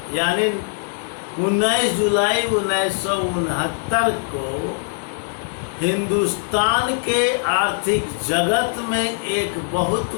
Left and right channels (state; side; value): silent; right; digital silence